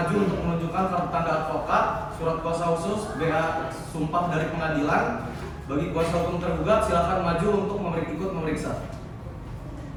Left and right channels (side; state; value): both; identical; correlation 1.00